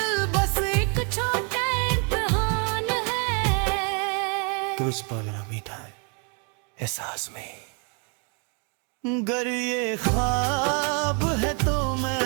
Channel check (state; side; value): quieter; left; 37.5 dB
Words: बस एक छोटा इम्तिहान है। तो उस पल ना मीठा है एहसास में। गर ये ख्वाब है तो